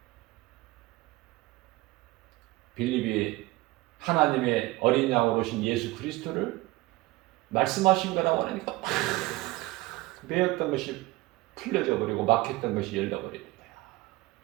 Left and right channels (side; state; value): left; quieter; 20.1 dB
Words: 빌립이 하나님의 어린 양으로 오신 예수 그리스도를 말씀하신 거라고 하니까 막 매였던 것이 풀려져 버리고 막혔던 것이 열려버리는 거야.